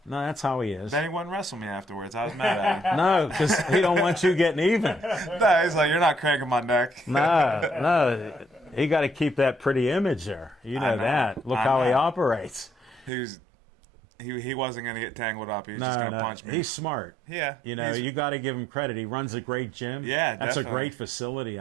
No, that's how he is. Then he wouldn't wrestle me afterwards. I was mad at him. No, because he don't want you getting even. No, he's like, you're not cranking my neck. No. He got to keep that pretty image there. You know, know. that. Look I how he know. operates. He wasn't going to get tangled up. He was just No, going to no. punch me. He's smart. Yeah. You know, you got to give him credit. He runs a great gym. Yeah, That's a definitely. great facility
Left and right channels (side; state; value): left; drops out; at 13.1 s